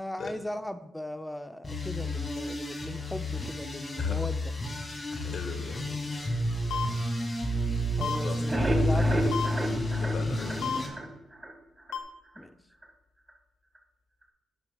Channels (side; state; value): both; normal; correlation 0.85